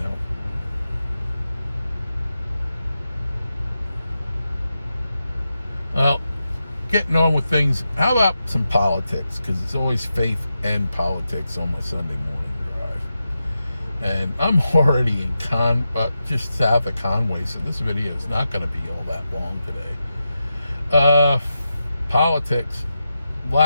Well, getting on with things. How about some politics? Because it's always faith and politics on my Sunday morning drive. And I'm already in just south of Conway, so this video is not going to be all that long today. Politics, a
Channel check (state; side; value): inverted; both; correlation -0.89